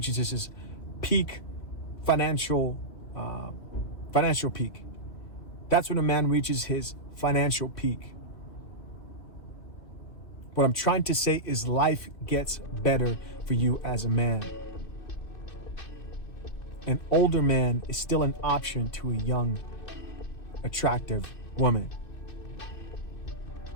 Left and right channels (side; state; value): right; late; 2.6 ms